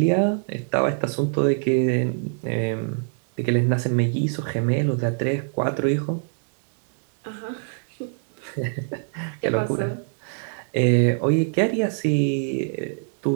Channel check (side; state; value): left; silent; digital silence